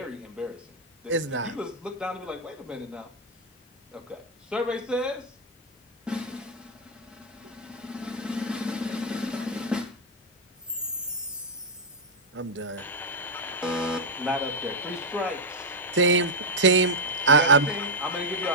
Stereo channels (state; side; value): normal; both; correlation -0.03